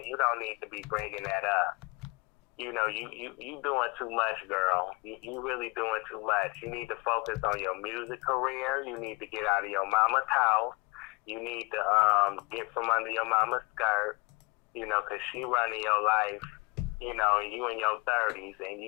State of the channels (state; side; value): quieter; right; 27.1 dB